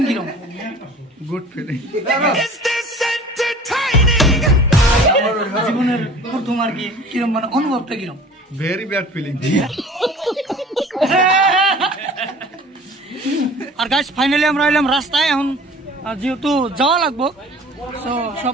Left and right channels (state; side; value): normal; both; correlation 0.45